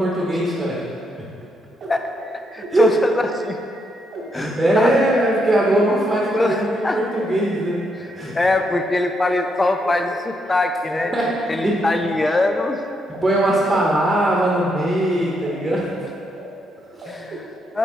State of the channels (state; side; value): normal; both; correlation 0.78